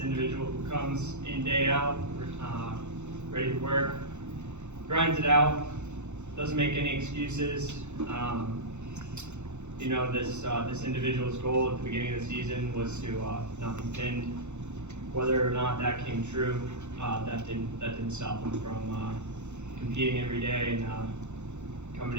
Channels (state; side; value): late; left; 0.83 ms